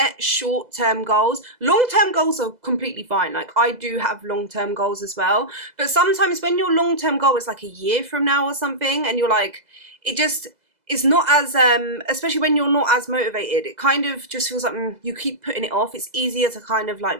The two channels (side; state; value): left; late; 2.0 ms